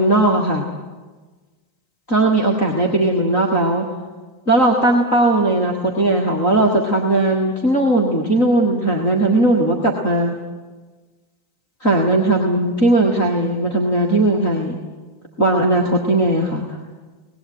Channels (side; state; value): right; late; 3.9 ms